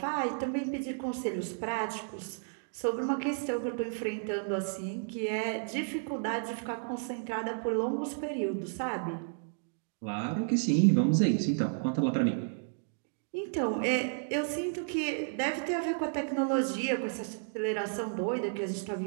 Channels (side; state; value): left; silent; digital silence